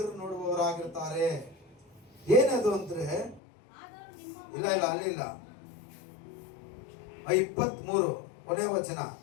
ನೋಡುವವರಾಗಿರ್ತಾರೆ. ಏನದು ಅಂದ್ರೆ, ಇಲ್ಲ ಅಲ್ಲಿಲ್ಲ, 23 ಕೊನೆ ವಚನ,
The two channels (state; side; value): drops out; right; at 3.4 s